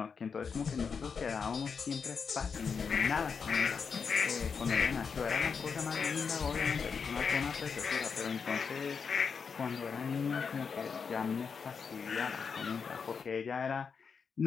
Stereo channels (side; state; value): right; quieter; 5.9 dB